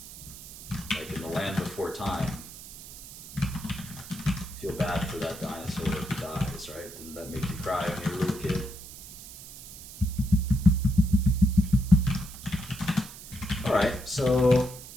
like in the land before time. Feel bad for that dinosaur who dies, right? Didn't that make you cry when you were a little kid? All right, so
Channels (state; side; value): noise; right; hiss, 15 dB below the sound